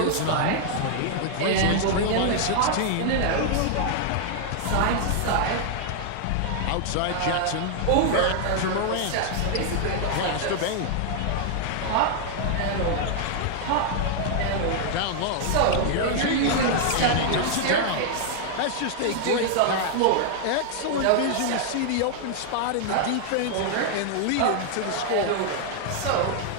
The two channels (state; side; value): different; both; correlation 0.00